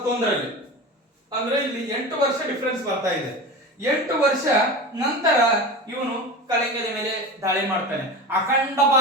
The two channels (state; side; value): normal; both; correlation 0.29